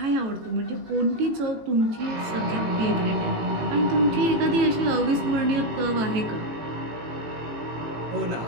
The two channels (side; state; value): left; late; 18 ms